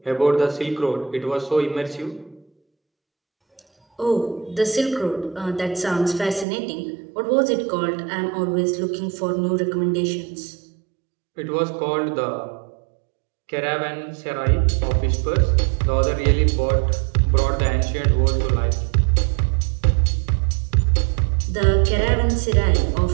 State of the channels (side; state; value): left; drops out; at 6.5 s